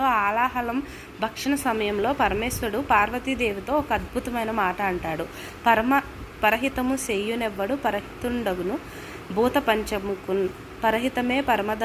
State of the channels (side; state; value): both; identical; correlation 1.00